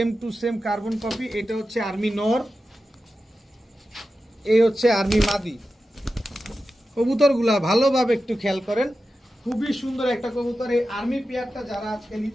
to same carbon copy. এটা হচ্ছে আর্মি নর, এই হচ্ছে আর্মি মাদি। কবুতরগুলা ভালোভাবে একটু খেয়াল করেন, খুবই সুন্দর একটা কবুতর। এই আর্মি পেয়ারটা যারা আজকে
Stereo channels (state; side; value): normal; both; correlation 0.92